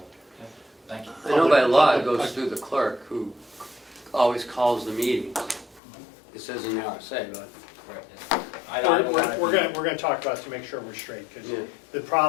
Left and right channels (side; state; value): right; drops out; at 5.8 s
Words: Thank you. I know by law it goes through the clerk, who always calls the meetings. It says in the RSA, but. We're going to talk about it to make sure we're straight, because Yeah. the